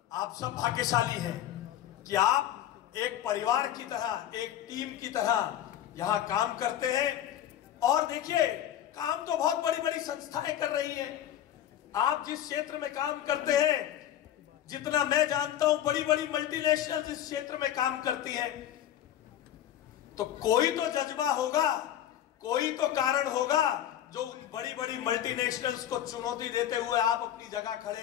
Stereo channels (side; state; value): right; quieter; 11.4 dB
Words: आप सब भाग्यशाली हैं कि आप एक परिवार की तरह, एक टीम की तरह यहां काम करते हैं। और देखिए, काम तो बहुत बड़ी बड़ी संस्थाएं कर रही हैं। आप जिस क्षेत्र में काम करते हैं, जितना मैं जानता हूं, बड़ी बड़ी मल्टीनेशनल इस क्षेत्र में काम करती हैं। तो कोई तो जज्बा होगा, कोई तो कारण होगा जो उन बड़ी बड़ी मल्टीनेशनल्स को चुनौती देते हुए आप अपनी जगह खड़े